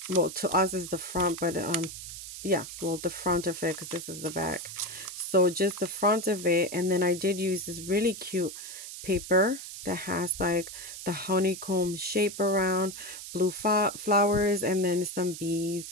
well, to us is the front, but yeah, well, the front of it, because this is the back. So just the front of it. And then I did use this really cute paper that has like the honeycomb shape around, blue flowers, and then some bees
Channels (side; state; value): right; noise; hiss, 10 dB below the sound